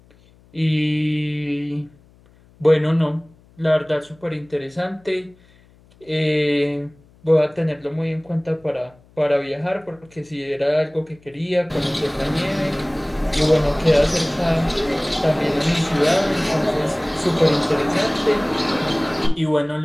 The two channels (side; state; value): left; noise; hum, 29 dB below the sound